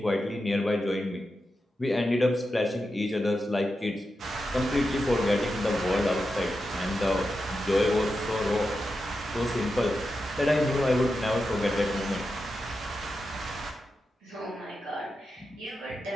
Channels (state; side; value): normal; both; correlation 0.89